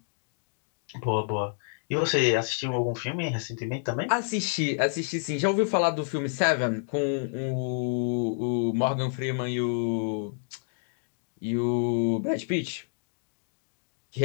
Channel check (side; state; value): right; silent; digital silence